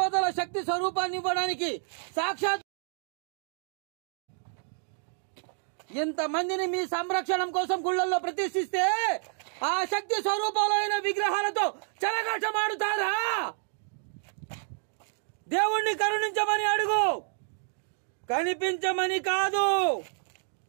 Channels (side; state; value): left; silent; 58 dB below the other